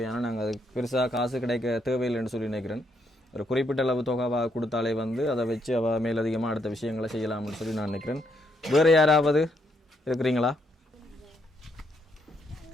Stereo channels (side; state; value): both; normal; correlation 0.75